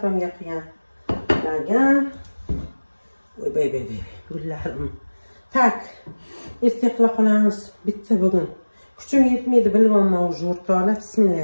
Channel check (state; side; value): inverted; both; correlation -1.00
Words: qilgan lagan. Voy bey, gullarim. Tak, erta qila qolamiz. Bitta bugun. Kuchim yetmaydi, bilmayman o'zi o'rtoqlar.